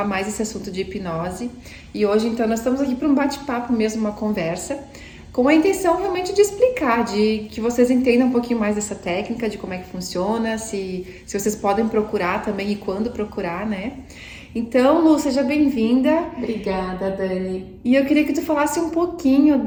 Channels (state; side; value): identical; both; correlation 1.00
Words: mais desse assunto de hipnose. E hoje, então, nós estamos aqui para um bate-papo mesmo, uma conversa, com a intenção realmente de explicar, de que vocês entendam um pouquinho mais dessa técnica, de como é que funciona, se vocês podem procurar também e quando procurar, né? Então, Lu, seja bem-vinda. Obrigada, Dani. E eu queria que tu falasse um pouquinho